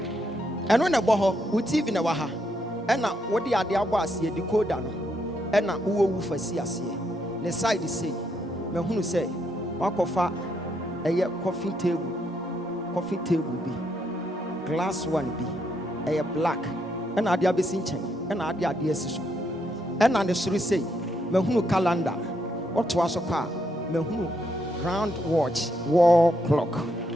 And when a boho, we TV in a waha. And now what the idea was here, the code no. And now who for see us here. The side is say, me who say, walk of a coffee table be, glass one be, a black, and I be seen and I dear sister. And on the street say, me who calendar, what was a car, me who round watch, wall clock,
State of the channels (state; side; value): normal; both; correlation 0.77